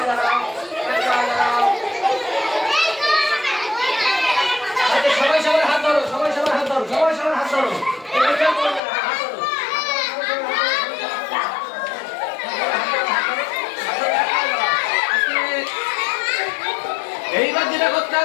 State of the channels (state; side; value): drops out; right; at 8.8 s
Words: দাঁড়াও, এক পায়ে দাঁড়াও। আচ্ছা, সবাই সবার হাত ধরো, সবাই সবার হাত ধরো, সবাই সবার হাত ধরো, এটা কেউ করবে না, হাত ধরো, এইবার যেটা করতে